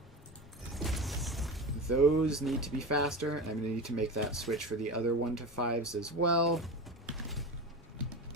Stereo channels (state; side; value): normal; both; correlation 0.26